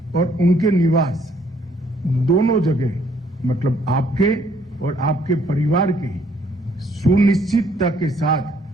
और उनके निवास दोनों जगह, मतलब आपके और आपके परिवार के सुनिश्चितता के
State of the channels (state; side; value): normal; both; correlation 0.65